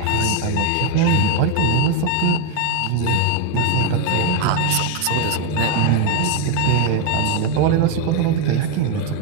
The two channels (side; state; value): both; different; correlation 0.01